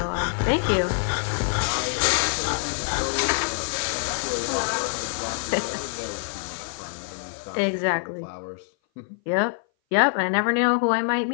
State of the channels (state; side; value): silent; right; 58 dB below the other